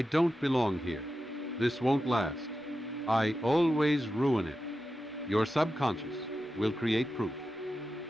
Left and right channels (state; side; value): normal; both; correlation 0.91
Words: don't belong here, this won't last, I always ruin it, your subconscious will create proof